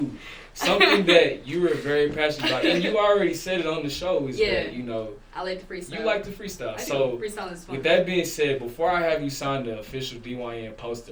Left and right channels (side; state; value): both; identical; correlation 1.00